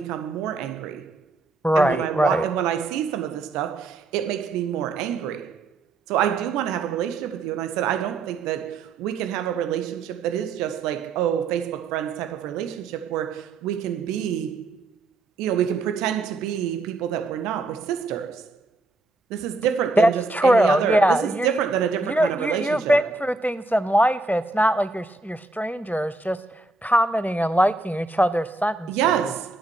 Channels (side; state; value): left; quieter; 3.2 dB